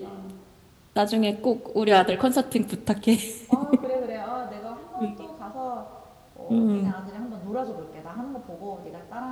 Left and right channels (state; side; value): identical; both; correlation 1.00